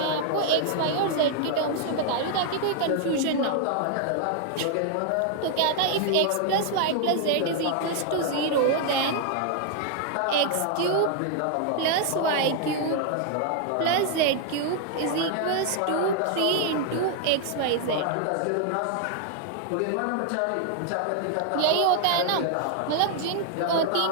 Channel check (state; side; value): different; both; correlation 0.00